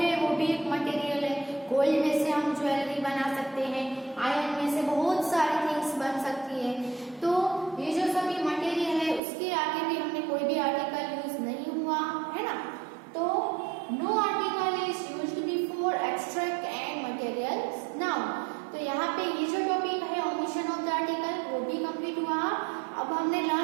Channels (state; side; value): drops out; left; at 9.2 s